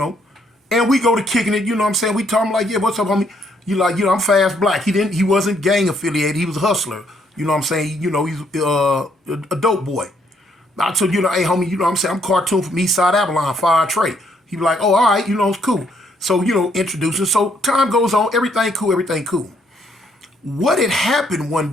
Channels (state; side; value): normal; both; correlation 0.70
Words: and we go to kicking it, what I'm saying? We tell him like, yeah, what's up, homie? You like, I'm Fast Blacc. He wasn't gang affiliated. He was a hustler. You know what I'm saying? He's a dope boy. I told hey, homie, what I'm saying? I'm cartoon from East Side Avalon, Fire Trey. He be like, oh, all right, it's cool. So, introducing. So time goes on, everything cool. What had happened one